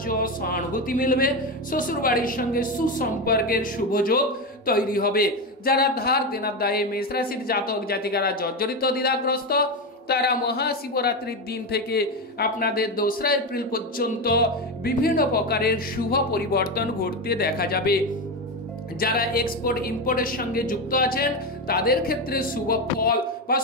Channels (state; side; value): normal; both; correlation 0.15